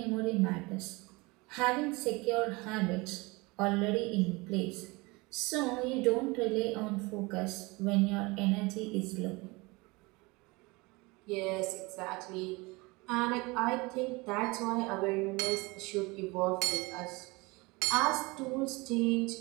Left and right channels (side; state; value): left; quieter; 24.8 dB